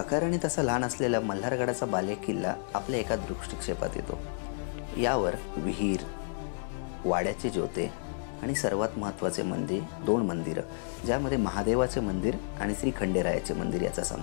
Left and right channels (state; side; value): silent; right; digital silence